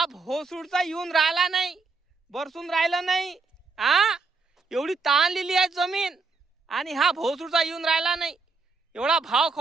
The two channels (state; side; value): quieter; left; 4.2 dB